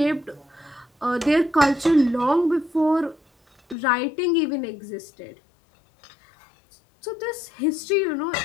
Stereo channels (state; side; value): drops out; right; at 3.8 s